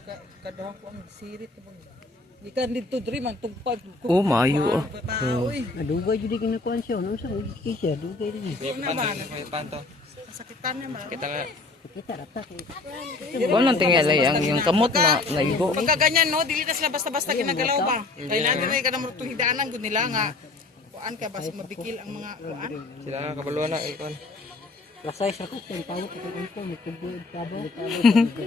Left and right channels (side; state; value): right; quieter; 3.5 dB